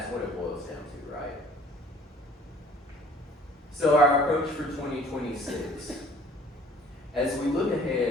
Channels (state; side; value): normal; both; correlation 0.53